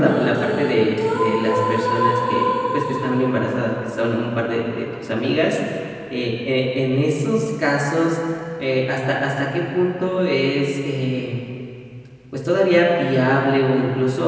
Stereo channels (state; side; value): identical; both; correlation 1.00